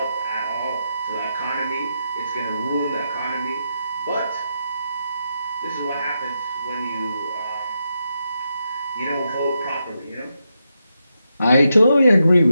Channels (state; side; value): inverted; both; correlation -0.84